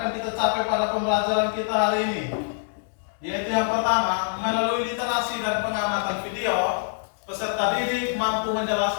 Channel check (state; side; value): silent; right; digital silence